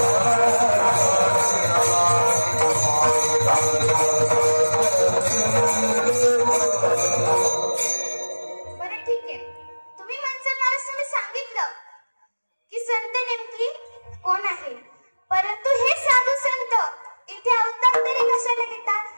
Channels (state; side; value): inverted; both; correlation -1.00